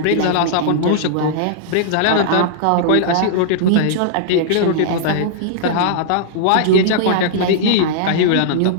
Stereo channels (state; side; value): different; both; correlation -0.01